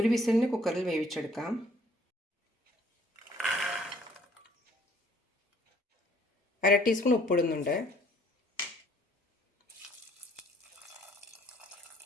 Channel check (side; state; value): both; normal; correlation 0.60